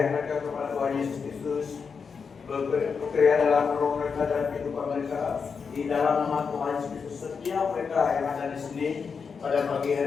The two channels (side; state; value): right; quieter; 5.7 dB